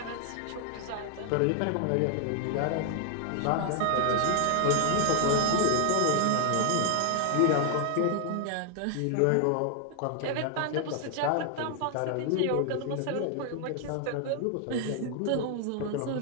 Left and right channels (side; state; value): both; different; correlation 0.00